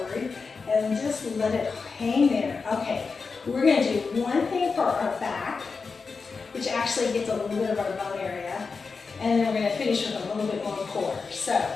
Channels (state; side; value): quieter; right; 4.8 dB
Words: and just let it hang there. Okay, we're gonna do one thing for our back, which actually gets a little bit of our bum area, and then we're gonna finish with a little bit more core. So,